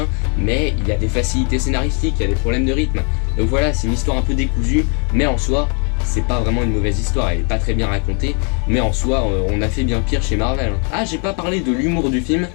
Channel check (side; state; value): right; quieter; 38.5 dB